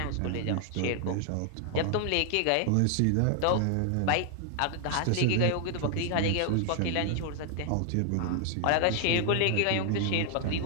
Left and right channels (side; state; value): both; different; correlation 0.00